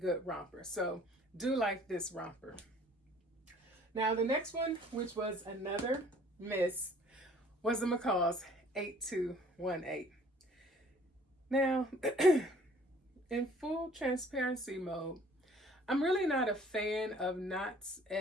romper. So do like this romper. Now the next one, which was another miss, was the McCall's 8218. Now, in full transparency mode, I'm really not a fan of knots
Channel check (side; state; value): both; normal; correlation 0.54